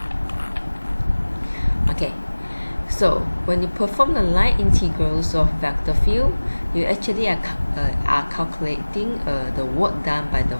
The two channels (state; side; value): inverted; both; correlation -1.00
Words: Okay, so when you perform the line integrals of vector field, you actually are calculating the work done by the